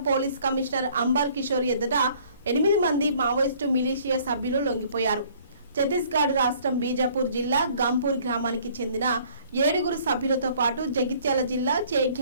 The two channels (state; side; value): inverted; both; correlation -0.57